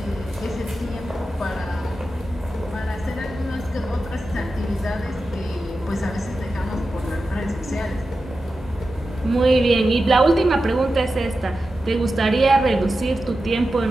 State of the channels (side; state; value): both; normal; correlation 0.92